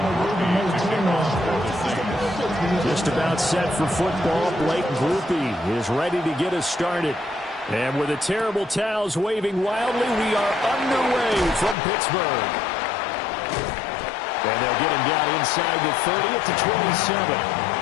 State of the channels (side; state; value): right; drops out; at 11.8 s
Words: Just about set for football. Blake Grupe is ready to get us started. And with the terrible towels waving wildly, we are underway from Pittsburgh. And they'll get him down inside the 30 at the 27.